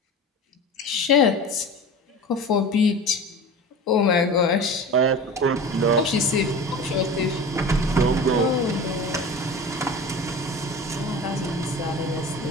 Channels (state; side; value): normal; both; correlation 0.34